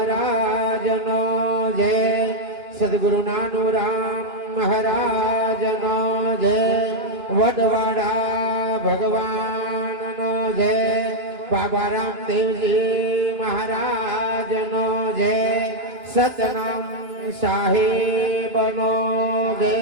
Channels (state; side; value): late; left; 2.9 ms